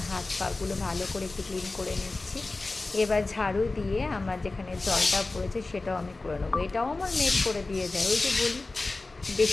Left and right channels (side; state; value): right; quieter; 3.3 dB